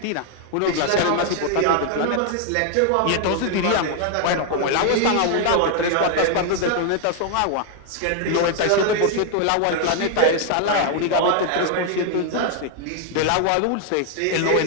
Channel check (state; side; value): different; both; correlation 0.00